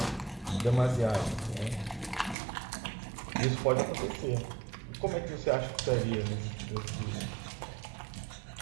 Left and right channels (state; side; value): drops out; left; at 2.4 s